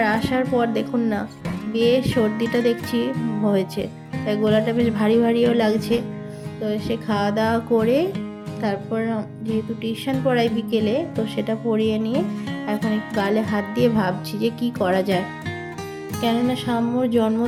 আসার পর দেখুন না, বেশ সর্দিটা দেখছি হয়েছে, তাই গলাটা বেশ ভারী ভারীও লাগছে। তো এসে খাওয়া দাওয়া করে তারপর যেহেতু টিউশন পড়াই বিকেলে, তো সেটা পড়িয়ে নিয়ে এখন একটু গালে হাত দিয়ে ভাবছি যে কি করা যায়। কেননা সাম্যর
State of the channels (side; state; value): both; identical; correlation 1.00